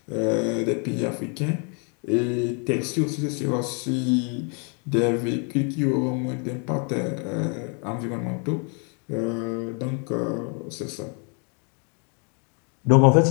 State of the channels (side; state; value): right; quieter; 37.9 dB